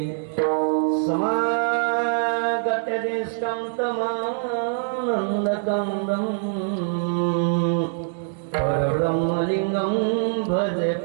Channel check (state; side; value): silent; left; digital silence